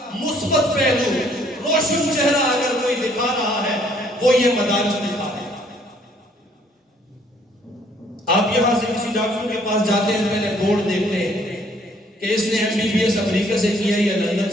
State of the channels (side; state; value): both; normal; correlation 0.63